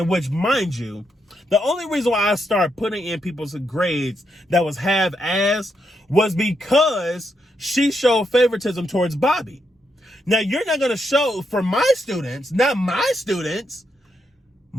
which, mind you, the only reason why I started putting in people's grades that was half-ass was because she showed favoritism towards Bobby. Now, you're not going to show for my students, not my students.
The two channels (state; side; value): normal; both; correlation 0.81